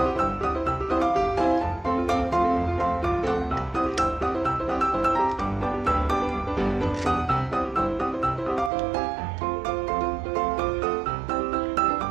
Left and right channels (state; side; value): drops out; left; at 8.7 s